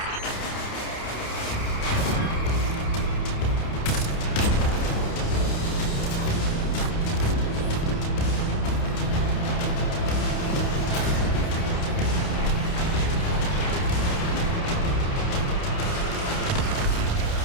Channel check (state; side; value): late; right; 29 ms